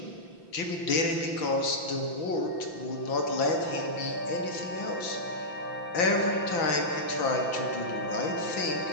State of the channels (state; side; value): late; right; 5.9 ms